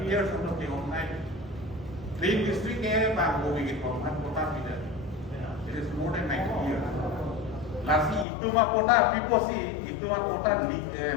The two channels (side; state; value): right; drops out; at 8.2 s